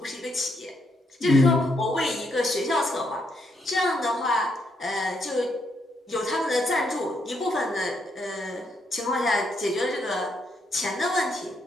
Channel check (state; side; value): normal; both; correlation 0.76